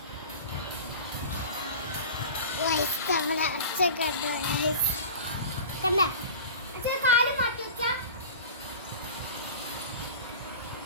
നമ്മുടെ അച്ഛ കണ്ടോ കണ്ട അച്ഛൻ കാല് മാറ്റി വെച്ചാ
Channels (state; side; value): inverted; both; correlation -0.35